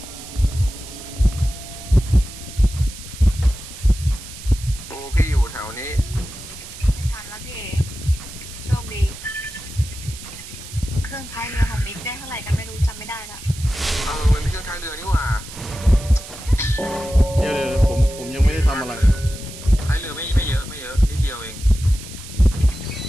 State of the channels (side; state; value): right; noise; hiss, 14 dB below the sound